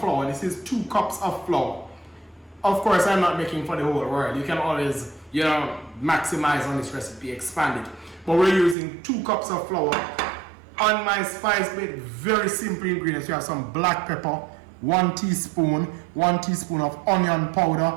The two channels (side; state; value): left; drops out; at 8.8 s